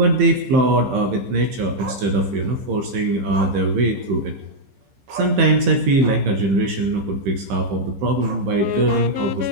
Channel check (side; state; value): left; late; 15 ms